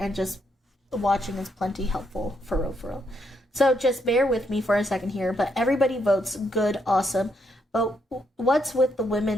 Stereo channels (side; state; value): both; normal; correlation 0.76